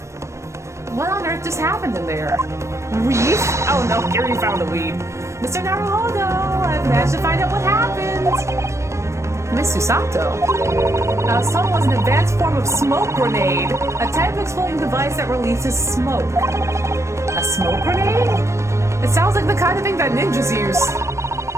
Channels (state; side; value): late; left; 0.14 ms